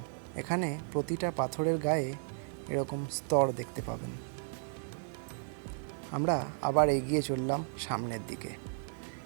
এখানে প্রতিটা পাথরের গায়ে এরকম স্তর দেখতে পাবেন। আমরা আবার এগিয়ে চললাম সামনের দিকে।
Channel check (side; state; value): left; silent; digital silence